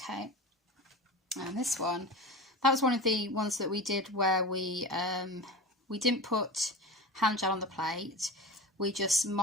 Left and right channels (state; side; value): normal; both; correlation 0.31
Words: and this one, that was one of the ones that we did where we didn't put hand gel on the plate. We just